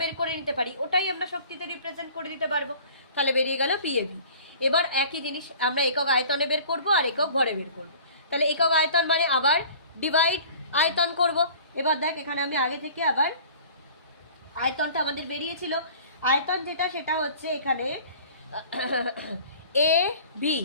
বের করে নিতে পারি ওটাই আমরা শক্তিতে রিপ্রেজেন্ট করে দিতে পারবো। তাহলে বেরিয়ে গেল পিএভি। এবার একই জিনিস আমরা একক আয়তনে বের করব আর একক ভরে বের করব। তাহলে একক আয়তন মানে আবার ডিভাইড আয়তন করব। এবার দেখ এখানে আমি আগে থেকে আবার আয়তনটা আমাদের বেরিয়েছিল, আয়তন যেটা সেটা হচ্ছে এখানে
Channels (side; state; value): both; inverted; correlation -0.46